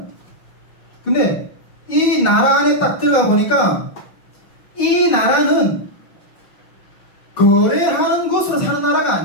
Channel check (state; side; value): late; right; 5.9 ms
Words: 근데 이 나라 안에 딱 들어가 보니까 이 나라는 거래하는 것으로 사는 나라가